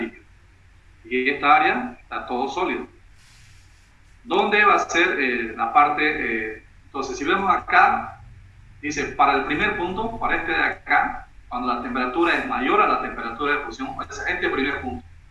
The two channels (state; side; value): identical; both; correlation 1.00